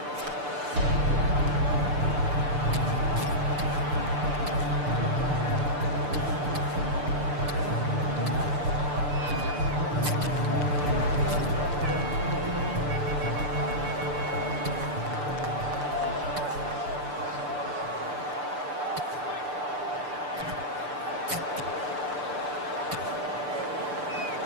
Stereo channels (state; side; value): late; left; 6.8 ms